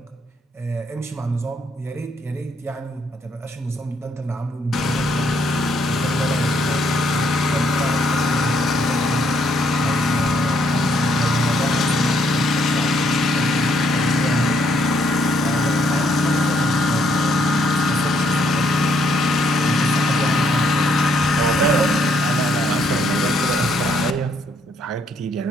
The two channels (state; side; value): normal; both; correlation 0.71